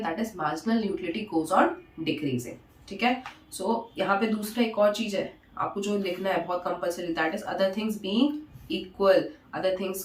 that is marginal utility goes on decreasing. ठीक है, सो यहाँ पे दूसरा एक और चीज है आपको जो लिखना है बहुत compulsory, that is other things being equal, other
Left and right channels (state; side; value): identical; both; correlation 1.00